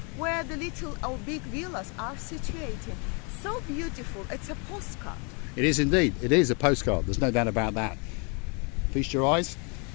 where the little or big villas are situated. So beautiful, it's a postcard. It is indeed. It is a postcard. There's no doubt about that. Feast your eyes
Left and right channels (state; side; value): quieter; right; 34.5 dB